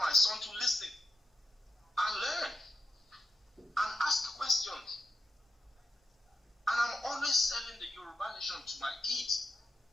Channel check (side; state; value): both; normal; correlation 0.86